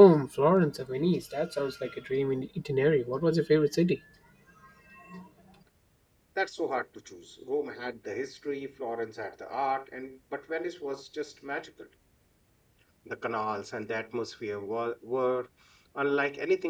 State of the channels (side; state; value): both; identical; correlation 1.00